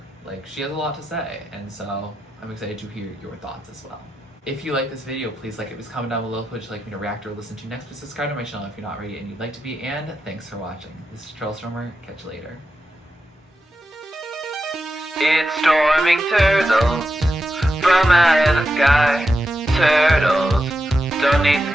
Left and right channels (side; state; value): both; normal; correlation 0.88